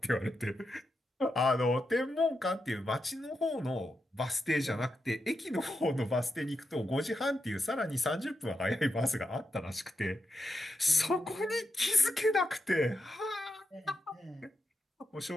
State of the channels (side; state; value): both; normal; correlation 0.86